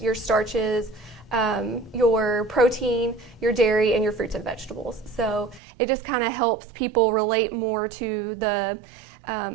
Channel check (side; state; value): left; drops out; at 5.6 s